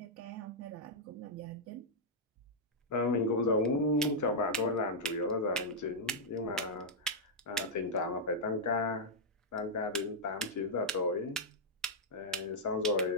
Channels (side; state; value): both; normal; correlation -0.08